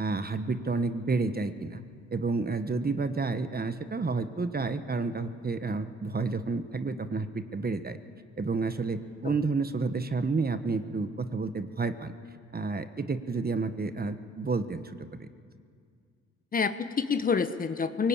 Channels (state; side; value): normal; both; correlation 0.61